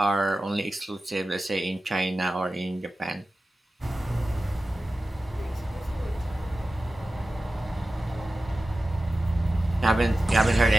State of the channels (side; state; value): both; normal; correlation 0.94